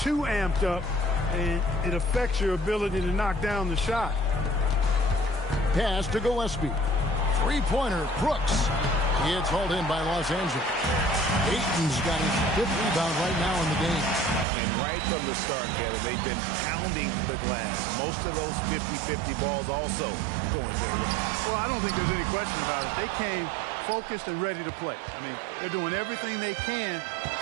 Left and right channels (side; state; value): left; drops out; at 14.5 s